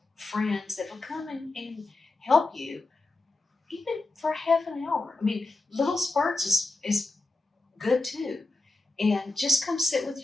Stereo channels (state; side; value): quieter; right; 3.1 dB